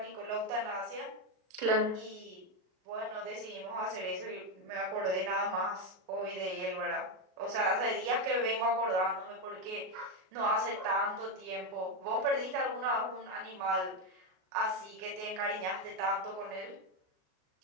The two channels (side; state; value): left; late; 38 ms